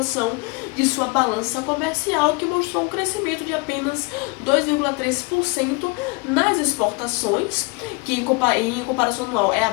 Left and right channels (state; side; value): quieter; right; 28.2 dB